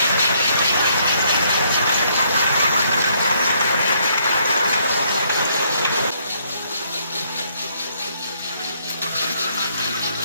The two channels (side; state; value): both; inverted; correlation -0.69